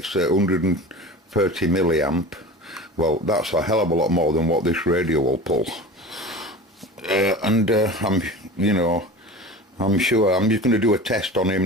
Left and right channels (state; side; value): normal; both; correlation 0.34